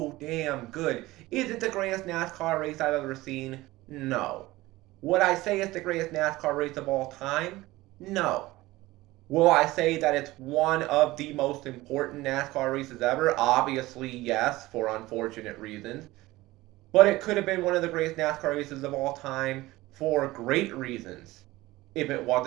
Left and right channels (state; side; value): quieter; left; 18.8 dB